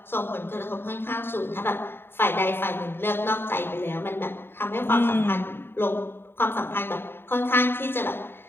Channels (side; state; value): right; late; 0.11 ms